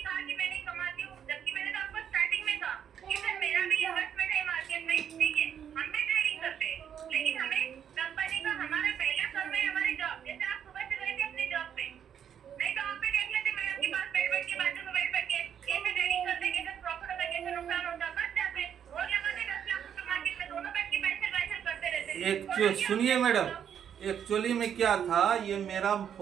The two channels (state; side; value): quieter; left; 8.8 dB